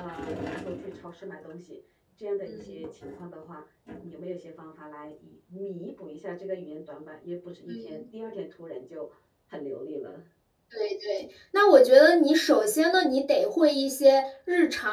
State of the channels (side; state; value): both; identical; correlation 1.00